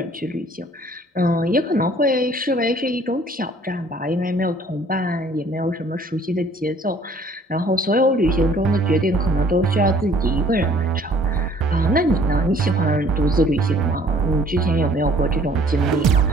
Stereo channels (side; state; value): both; normal; correlation 0.56